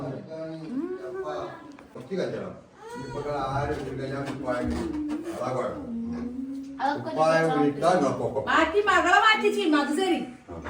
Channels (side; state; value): both; identical; correlation 1.00